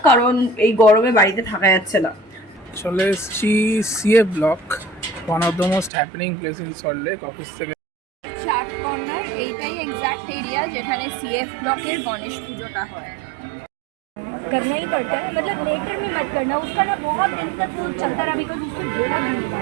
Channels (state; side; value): drops out; left; at 5.9 s